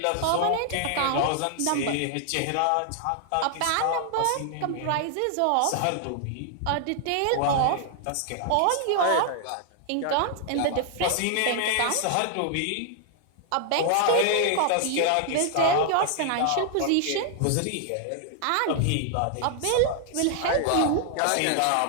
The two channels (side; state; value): both; different; correlation 0.00